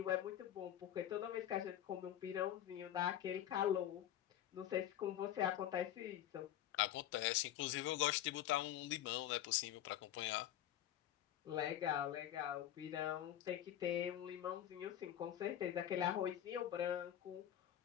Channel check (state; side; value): quieter; right; 11.7 dB